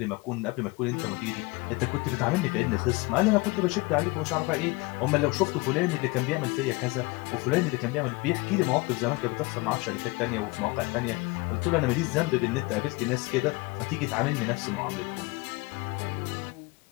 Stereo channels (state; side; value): quieter; right; 24.5 dB